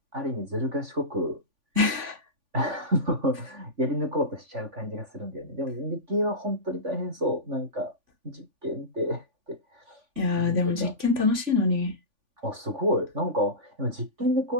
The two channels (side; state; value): left; late; 3.5 ms